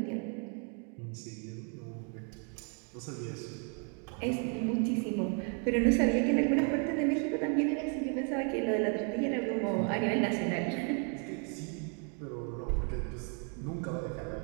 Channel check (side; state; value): left; quieter; 39.3 dB